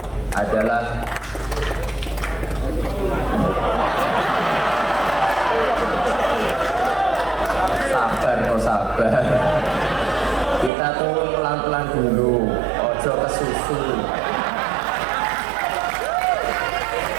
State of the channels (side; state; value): left; drops out; at 10.7 s